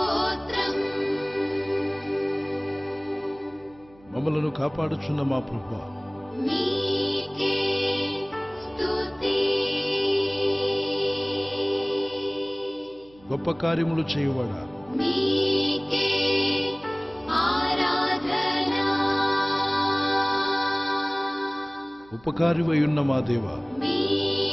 మమ్మలను కాపాడుచున్న మా ప్రభువా, నీకే స్తుతి గొప్ప కార్యములు చేయువాడా, నీకే ఆరాధన ఉపకారివై ఉన్న మా దేవ,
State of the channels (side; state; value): right; noise; hum, 27 dB below the sound